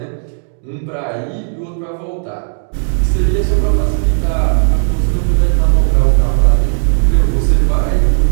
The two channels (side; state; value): left; silent; digital silence